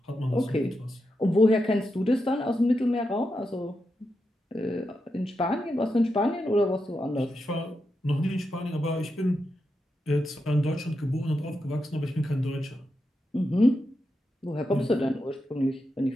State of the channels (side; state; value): both; normal; correlation 0.87